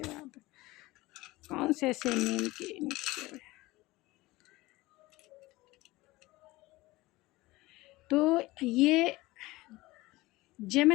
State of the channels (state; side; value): quieter; right; 20.0 dB